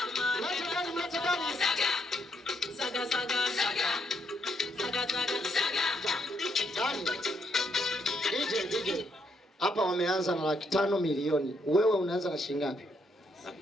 Mlete Dani. DJ. Hapa wameanza na 500,000 milioni. Wewe unaanza na shilingi ngapi?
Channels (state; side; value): normal; both; correlation 0.75